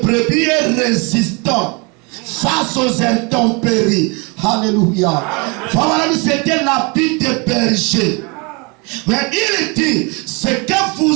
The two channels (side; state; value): left; quieter; 30.3 dB